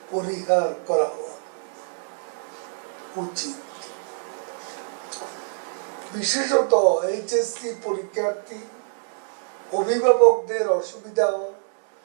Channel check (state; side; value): silent; left; digital silence